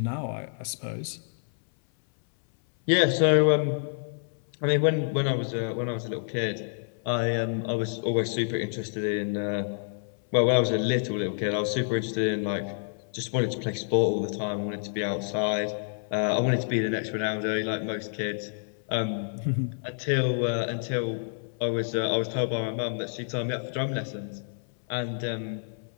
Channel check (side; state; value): right; silent; 59 dB below the other